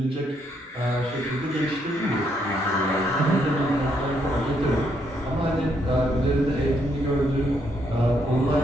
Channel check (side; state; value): both; normal; correlation 0.74